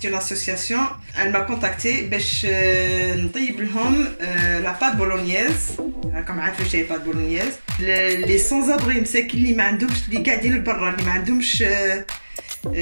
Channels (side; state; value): both; inverted; correlation -1.00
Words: اون اسوسياسيون elle m'a contacté باش نطيب لهم لا بات بولونييز. راكم عارفين واش هي بات بولونييز. لي سون ابري مساكين اللي ما عندهمش، اللي قاعدين لبرا، اللي ما عندهمش